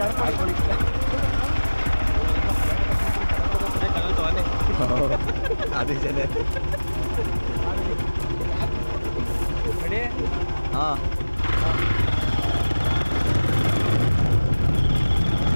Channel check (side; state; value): both; inverted; correlation -1.00